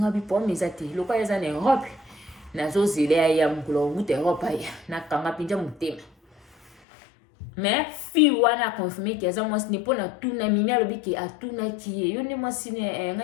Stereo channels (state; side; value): drops out; right; at 6.7 s